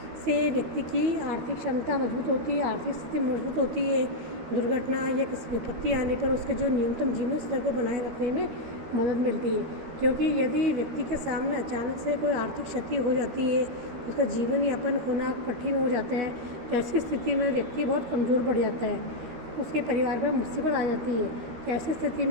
से व्यक्ति की आर्थिक क्षमता मजबूत होती है, आर्थिक स्थिति मजबूत होती है। दुर्घटना या किसी विपत्ति आने पर उसके जो न्यूनतम जीवन स्तर को बनाए रखने में मदद मिलती है, क्योंकि यदि व्यक्ति के सामने अचानक से कोई आर्थिक क्षति हो जाती है, उसका जीवन यापन होना कठिन हो जाता है, तो ऐसी स्थिति में व्यक्ति बहुत कमज़ोर पड़ जाता है, उसके परिवार पर मुसीबत आ जाती है। तो ऐसी स्थिति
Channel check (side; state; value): left; late; 13 ms